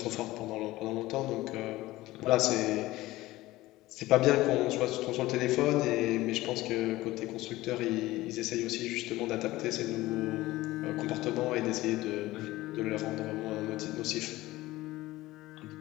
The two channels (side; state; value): right; quieter; 17.8 dB